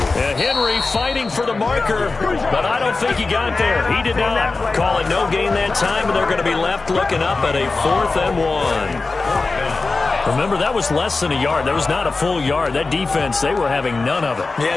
Henry fighting for the marker, but I don't think he got there. He did not. Call it no gain that time, and they're going to be left looking up at a 4th and 1. Remember, that was less than a yard. That was not a full yard. That defense, they were having none of it. Yeah,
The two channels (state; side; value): quieter; right; 3.8 dB